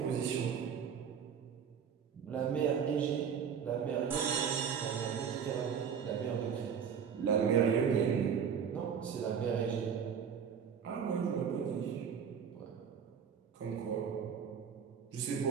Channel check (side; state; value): left; quieter; 7.4 dB